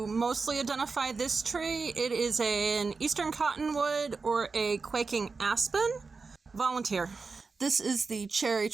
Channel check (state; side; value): quieter; left; 4.5 dB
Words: mostly identify this tree. It is an eastern cottonwood or a quaking aspen. Volunteer. This is the cherry